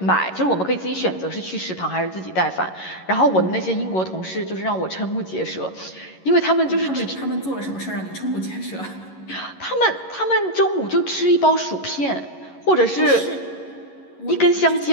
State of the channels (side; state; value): right; late; 11 ms